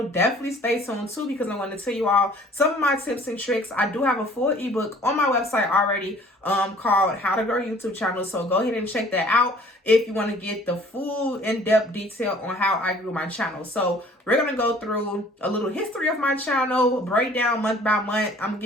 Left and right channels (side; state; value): both; normal; correlation 0.53